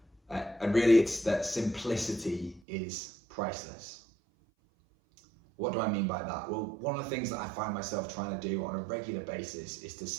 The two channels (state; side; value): drops out; left; at 2.6 s